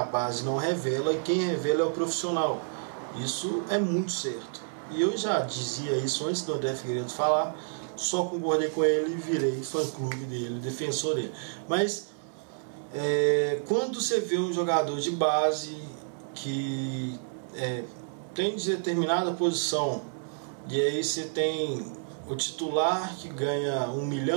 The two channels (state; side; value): silent; left; 58 dB below the other